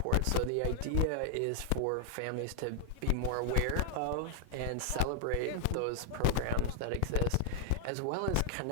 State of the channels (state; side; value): different; both; correlation -0.01